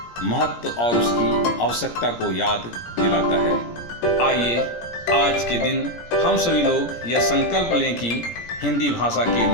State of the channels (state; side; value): late; right; 17 ms